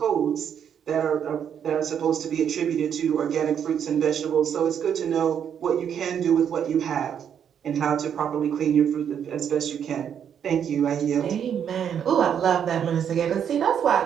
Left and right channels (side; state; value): left; quieter; 8.5 dB